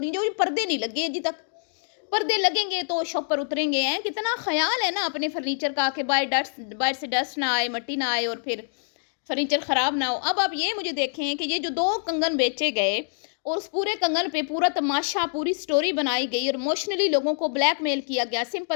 ہیں، جو پردے نہیں لگے ابھی تک. پردے لگیں گے تو شوپر اتریں گے. ہیں کتنا خیال ہے نا اپنے فرنیچر کا کہ باہر سے ڈسٹ نہ آئے، مٹی نہ آئے اور پھر فرنیچر خراب نہ ہو. اب آپ یہ مجھے دیکھیں کہ یہ جو 2 کنگن بیچے گئے اور اس پورے کنگن پہ پورا تماشا، پوری سٹوری بنائی گئی اور ایموشنلی لوگوں کو بلیک میل کیا گیا،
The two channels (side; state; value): right; silent; digital silence